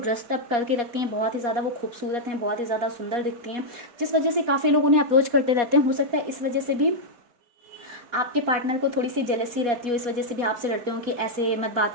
अप करके रखती हैं, बहुत ही ज़्यादा वो खूबसूरत हैं, बहुत ही ज़्यादा सुंदर दिखती हैं, जिस वजह से काफ़ी लोग उन्हें अप्रोच करते रहते हैं। हो सकता है इस वजह से भी आपके पार्टनर को थोड़ी सी जेलसी रहती हो, इस वजह से भी आपसे डरते हो कि ऐसे मत बात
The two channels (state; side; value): late; left; 4.2 ms